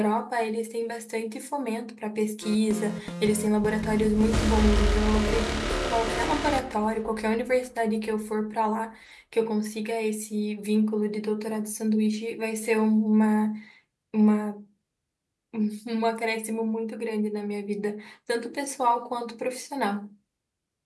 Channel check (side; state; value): both; identical; correlation 1.00